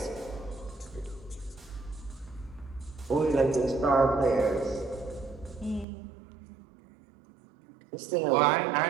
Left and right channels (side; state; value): left; drops out; at 5.9 s